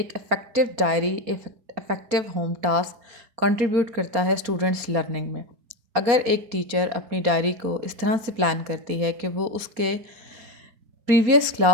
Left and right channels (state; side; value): late; left; 4.2 ms